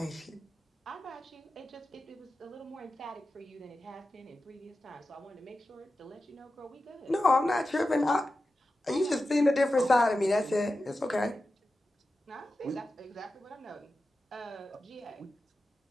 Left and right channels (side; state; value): both; normal; correlation 0.93